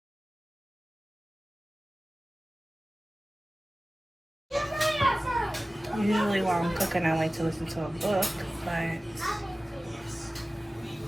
usually while I'm cooking I like to listen to a book, but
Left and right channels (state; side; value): normal; both; correlation 0.96